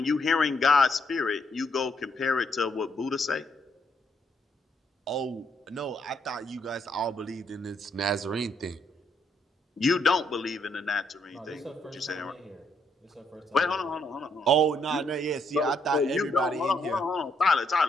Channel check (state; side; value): normal; both; correlation 0.74